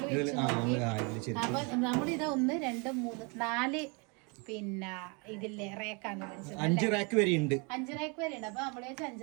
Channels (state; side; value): quieter; left; 32.0 dB